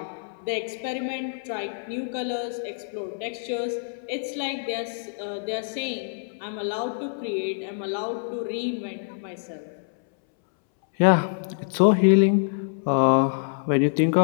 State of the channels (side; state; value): right; silent; 61 dB below the other